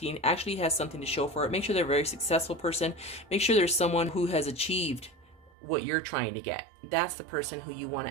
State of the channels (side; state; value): left; drops out; at 5.5 s